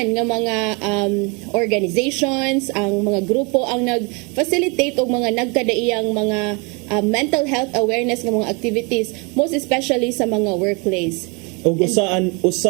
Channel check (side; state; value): left; quieter; 31.2 dB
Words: nga mga organizations, ang mga grupo ang nag-facilitate og mga nagkadaiyang mga mental health awareness nga mga activities, most especially sa mga workplace. O